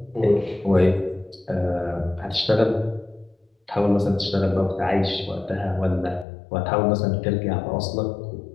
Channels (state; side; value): drops out; right; at 6.2 s